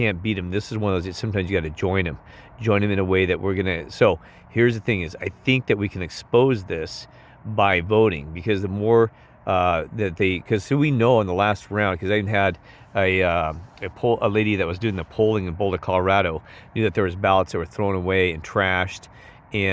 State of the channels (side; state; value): both; identical; correlation 1.00